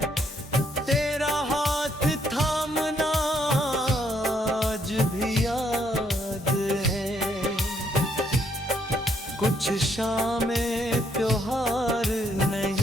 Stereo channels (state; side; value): normal; both; correlation 0.71